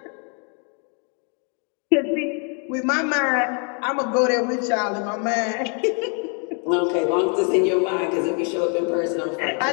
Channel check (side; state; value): right; quieter; 39.3 dB